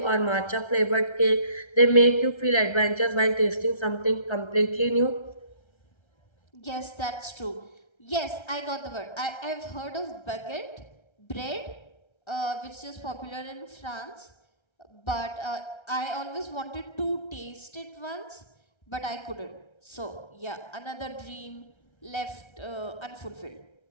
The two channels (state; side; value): late; right; 1.3 ms